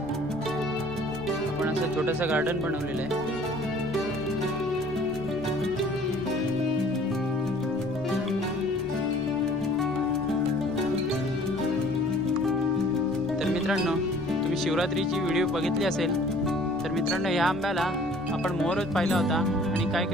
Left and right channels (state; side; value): normal; both; correlation 0.53